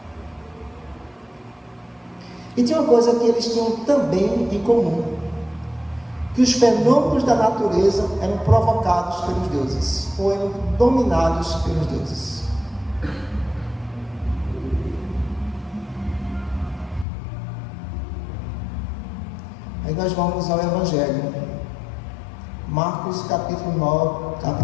E tinha uma coisa que eles tinham também em comum, que os fenômenos da natureza eram provocados pelos deuses, ou eram dominados pelos deuses. Aí nós vamos ao Evangelho. Marcos capítulo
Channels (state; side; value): drops out; right; at 17.1 s